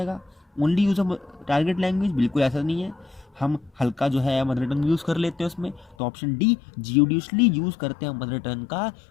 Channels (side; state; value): right; drops out; at 6.0 s